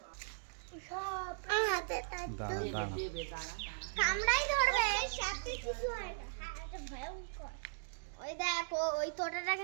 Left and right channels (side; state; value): left; silent; digital silence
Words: কামড়াই ধরবে সাথে কিছু হয় না এটা ভয়ঙ্কর ওই দেখো ওই তোটাটা